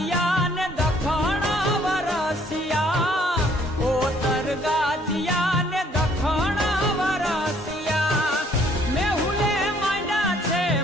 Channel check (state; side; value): normal; both; correlation 0.62